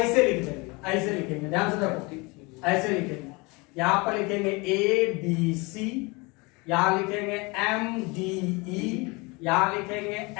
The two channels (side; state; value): right; quieter; 26.7 dB